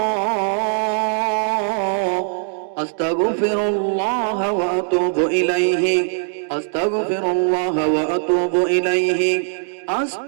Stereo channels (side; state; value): left; silent; digital silence